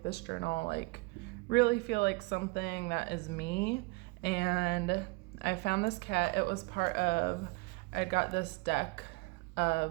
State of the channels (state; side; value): quieter; left; 25.8 dB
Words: this journal like really feel like something that is me. And I found this cat. It was part of, I got this deck